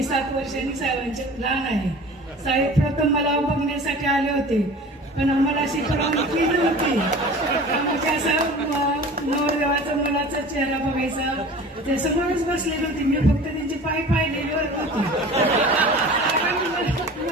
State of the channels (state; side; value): normal; both; correlation 0.40